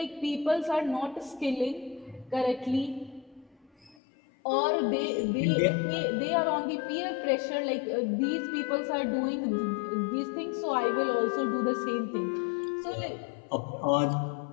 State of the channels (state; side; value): drops out; right; at 4.0 s